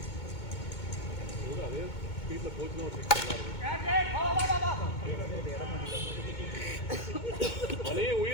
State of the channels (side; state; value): right; late; 2.2 ms